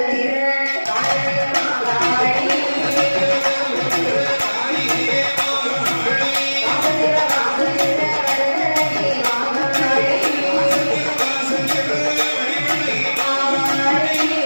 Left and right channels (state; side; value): inverted; both; correlation -1.00